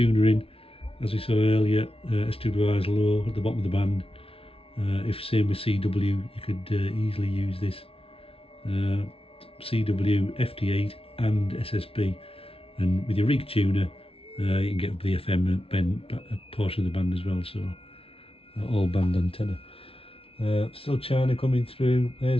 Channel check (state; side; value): late; right; 0.27 ms